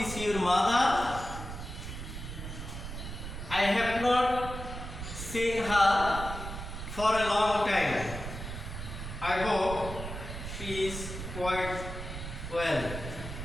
your mother? I have not seen her for a long time. I hope she is quite well.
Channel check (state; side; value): noise; right; rumble, 8 dB below the sound